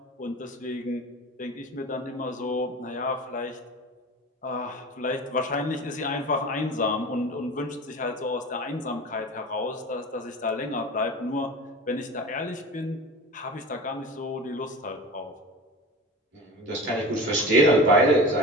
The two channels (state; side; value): normal; both; correlation 0.33